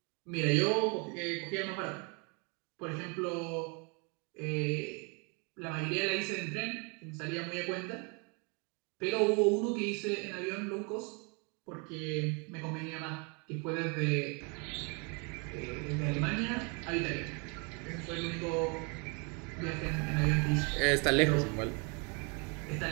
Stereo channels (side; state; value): left; quieter; 33.3 dB